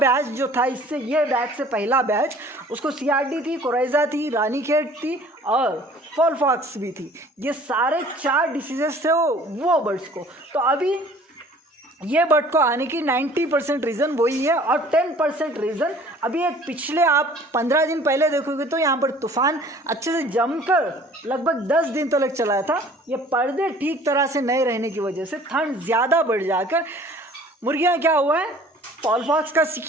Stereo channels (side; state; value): both; normal; correlation 0.51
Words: जो था, इससे ये बैच से पहला बैच, उसको CRD थी, कोराइजा थी, रानीखेत थी और फॉलफॉक्स भी थी। ये सारे 4 डिसीजेस थे वो बर्ड्स को। तो अभी ये बर्ड को आने की 90% रीज़न वही है। और 10% रीज़न अभी एक पिछले आप 15 दिन पहले देखोगे तो यहाँ पर तूफान अच्छे से जमकर लगभग 10 दिन तक चला था। ये पर्दे ठीक तरह से नहीं रहने की वजह से ठंड ज़्यादा बढ़ जाकर मुर्गियाँ क्या हुआ है, फॉलफॉक्स का